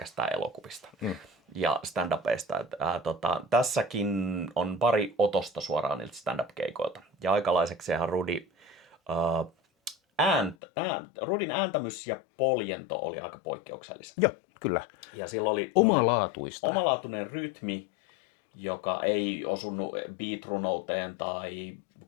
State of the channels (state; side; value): drops out; right; at 10.6 s